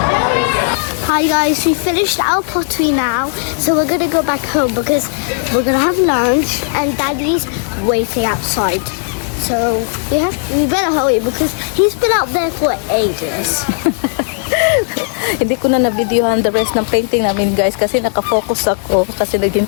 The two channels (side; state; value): right; silent; digital silence